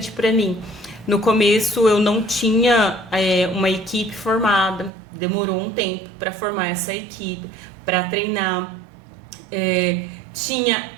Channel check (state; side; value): drops out; left; at 4.9 s